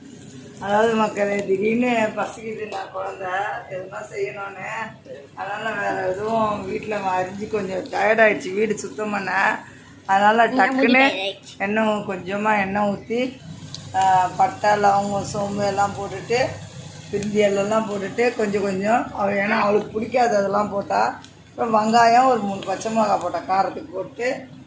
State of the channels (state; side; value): identical; both; correlation 1.00